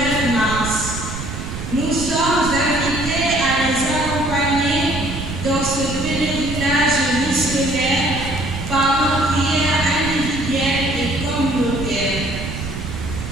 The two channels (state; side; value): noise; right; rumble, 7 dB below the sound